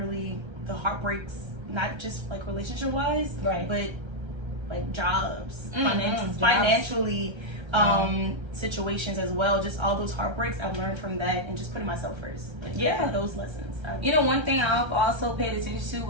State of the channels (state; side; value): late; left; 1.3 ms